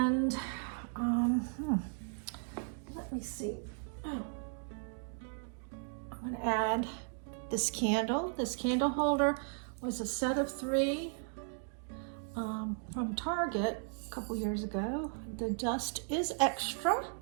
let me see. Oh, I'm gonna add this candle. This candle holder was a set of 3 from Target a couple years ago. The dust is extra.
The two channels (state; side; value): silent; left; 54 dB below the other